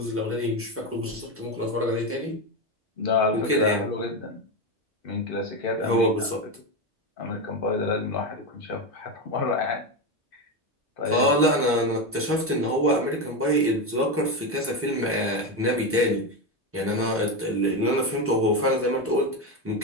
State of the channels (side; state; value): both; normal; correlation 0.13